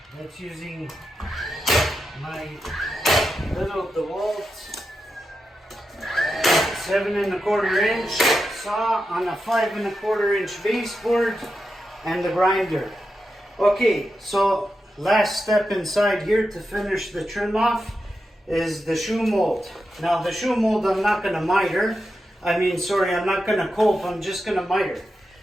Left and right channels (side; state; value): both; normal; correlation 0.88